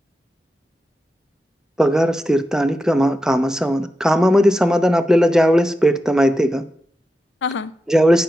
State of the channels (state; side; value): normal; both; correlation 0.89